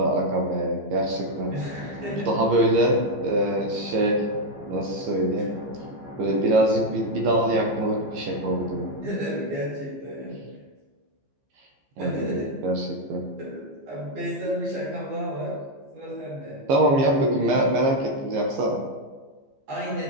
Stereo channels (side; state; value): left; late; 15 ms